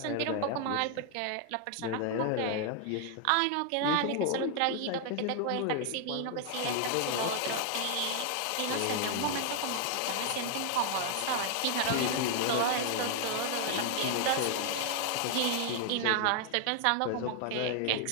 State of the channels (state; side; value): different; both; correlation 0.00